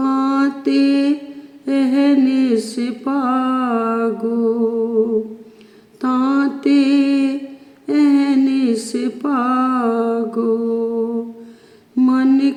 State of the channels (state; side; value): identical; both; correlation 1.00